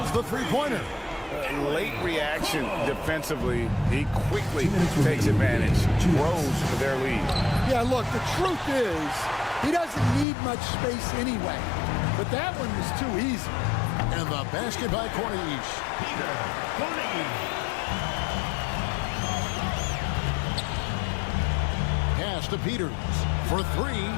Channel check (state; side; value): drops out; right; at 10.2 s